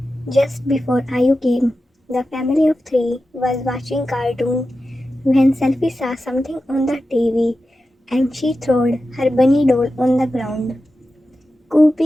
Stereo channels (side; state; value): both; normal; correlation 0.92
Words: Just before Ayu came, the family of three was watching cartoon when Selfie saw something on the TV and she threw her bunny doll on the ground. Koo